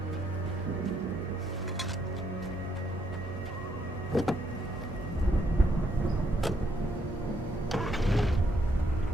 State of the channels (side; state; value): both; normal; correlation 0.74